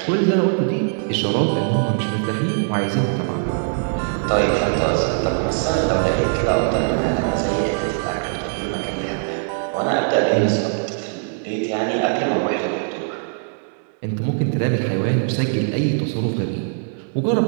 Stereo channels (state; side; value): silent; left; digital silence